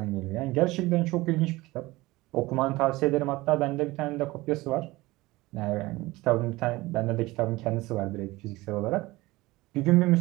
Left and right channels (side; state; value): left; quieter; 20.1 dB